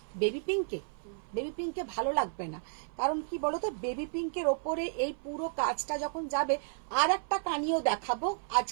বেবি পিঙ্কে ভালো লাগবে না, কারণ কি বলতো, বেবি পিঙ্কের ওপরে এই পুরো কাজটা যখন যাবে, আর একটা কানিও দেখাবো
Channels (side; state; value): left; silent; 56 dB below the other